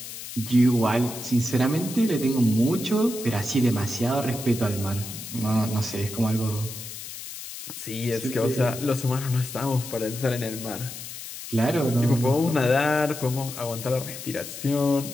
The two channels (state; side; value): noise; left; hiss, 10 dB below the sound